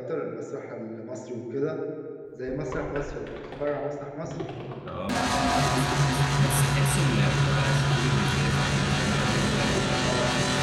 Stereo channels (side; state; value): both; identical; correlation 1.00